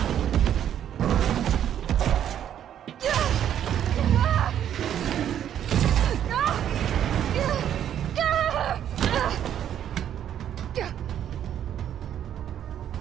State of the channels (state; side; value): quieter; left; 10.1 dB